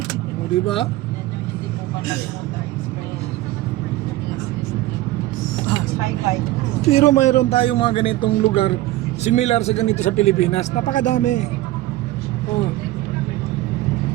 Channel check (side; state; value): left; quieter; 16.6 dB